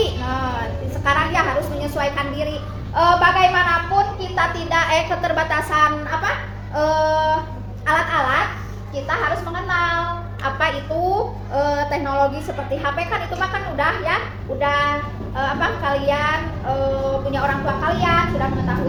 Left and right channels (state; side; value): identical; both; correlation 1.00